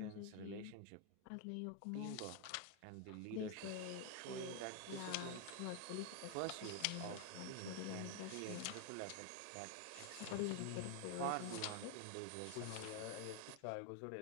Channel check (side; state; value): both; different; correlation 0.01